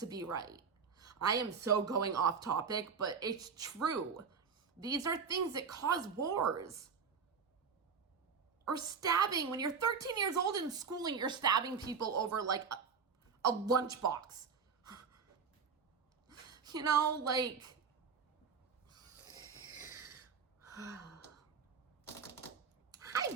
be right. I am so going off topic, but it's true. These are things that cause wars. Or stabbing. When you're 13 years old in school and you're stabbing people over like a lunchbox. You know, like... Hi,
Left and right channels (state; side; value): quieter; left; 5.8 dB